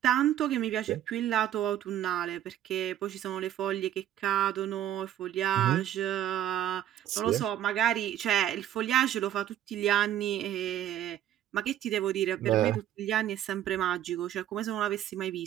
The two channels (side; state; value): left; quieter; 11.5 dB